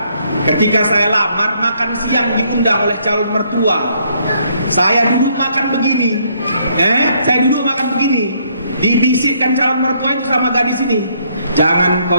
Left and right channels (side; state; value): both; inverted; correlation -0.69